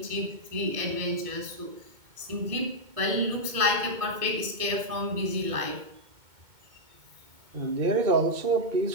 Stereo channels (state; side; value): late; left; 2.2 ms